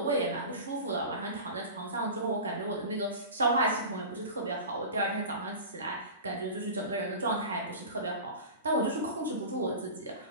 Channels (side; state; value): both; inverted; correlation -0.32